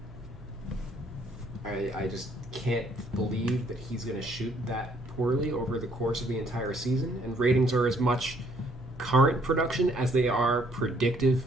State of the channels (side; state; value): right; noise; hum, 21 dB below the sound